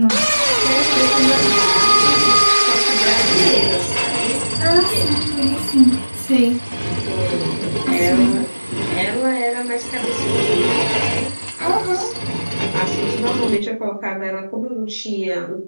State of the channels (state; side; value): inverted; both; correlation -1.00